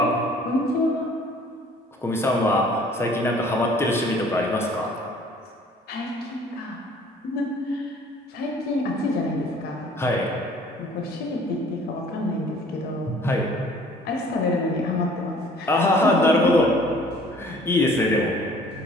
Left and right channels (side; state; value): both; normal; correlation 0.54